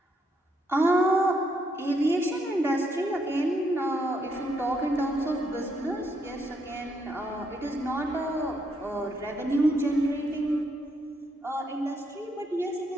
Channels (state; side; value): normal; both; correlation 0.76